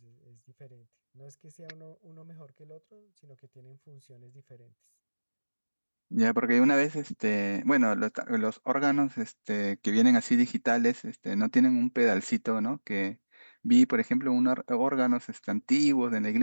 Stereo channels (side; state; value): both; inverted; correlation -1.00